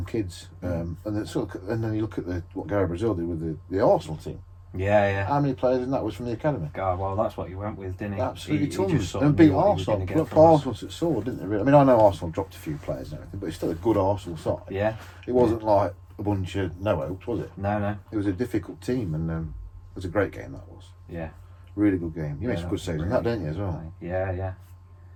kids, and then you look at what Gary Brazil did with the Arsenal team. Yeah. How many players in that was from the academy? God, well, that's what he went with, didn't he? Absolutely He tons. just sort And of beat knew what he was Arsenal. gonna get Look, from us. Arsenal at sword, didn't they? Really? I mean, I know Arsenal dropped a few players and everything, but it's still a good Arsenal side. Yeah. It wasn't like a bunch of no hopes, was it? No. It was a difficult team, and it was a great game. That was Yeah. really good game. You made Yeah, some that good was saves in really that, didn't you, as well? Yeah.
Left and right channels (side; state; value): both; identical; correlation 1.00